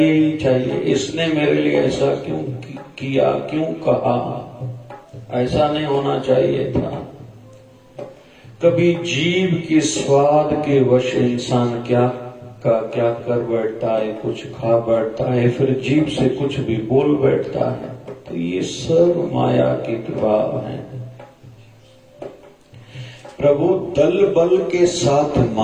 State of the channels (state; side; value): identical; both; correlation 1.00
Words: ही चाहिए, इसने मेरे लिए ऐसा क्यों किया, क्यों कहा, ऐसा नहीं होना चाहिए था। कभी जीभ के स्वाद के वश इंसान क्या कर बैठता है, कुछ खा बैठता है, फिर जीभ से कुछ भी बोल बैठता है। तो ये सब माया के प्रभाव है। प्रभु दल बल के साथ